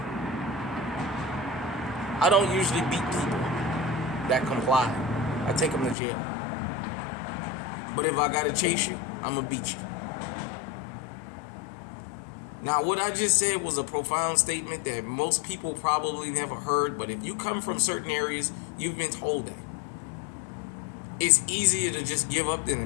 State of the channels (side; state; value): right; drops out; at 6.0 s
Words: I don't usually beat people that comply. I take them to jail. But if I gotta chase you, I'm gonna beat you. Now, what I just said was a profound statement that most people probably never heard, but if you come from certain areas, you've been told that. It's easier to just give up than to